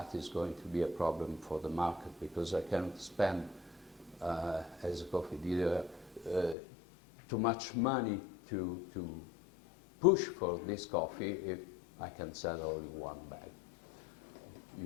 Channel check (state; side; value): drops out; right; at 6.6 s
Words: is going to be a problem for the market because I cannot spend, as a coffee dealer, too much money to push for this coffee if I can sell only 1 bag.